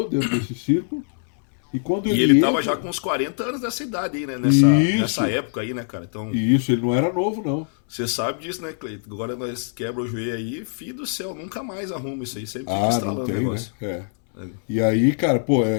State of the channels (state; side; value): silent; right; 64 dB below the other